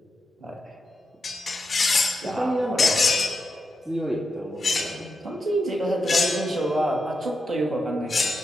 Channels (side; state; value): both; normal; correlation 0.86